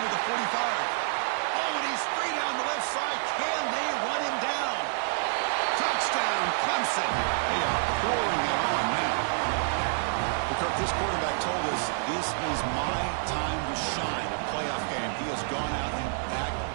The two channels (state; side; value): silent; left; digital silence